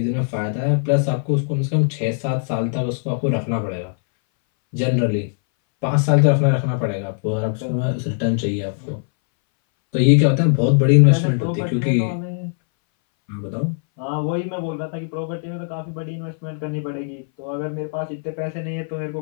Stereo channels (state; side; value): silent; right; 62 dB below the other